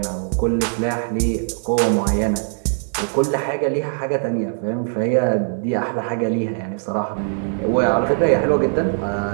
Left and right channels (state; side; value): silent; left; digital silence